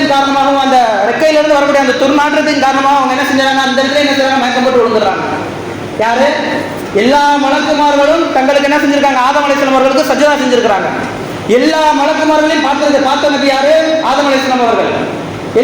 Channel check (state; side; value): identical; both; correlation 1.00